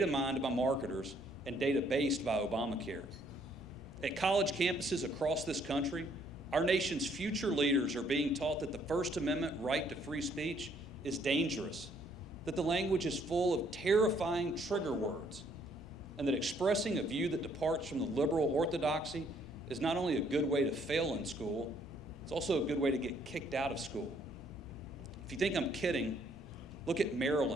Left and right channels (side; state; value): both; normal; correlation 0.66